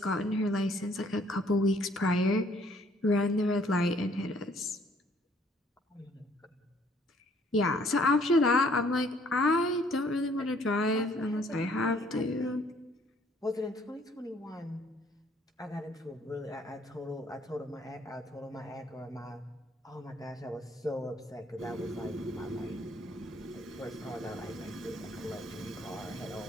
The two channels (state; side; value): normal; both; correlation 0.62